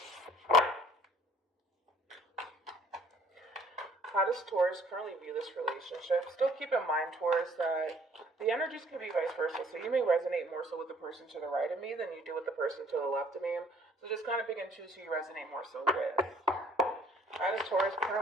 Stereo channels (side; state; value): both; normal; correlation 0.58